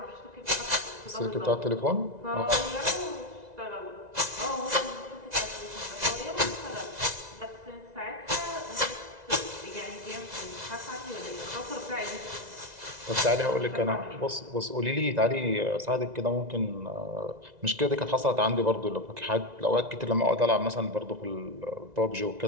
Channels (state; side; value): late; left; 2.0 ms